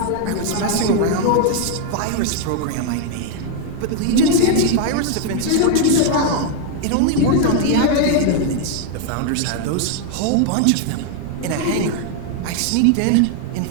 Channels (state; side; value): different; both; correlation 0.00